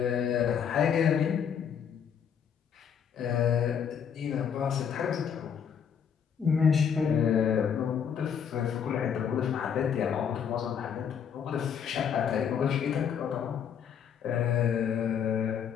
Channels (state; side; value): quieter; right; 7.7 dB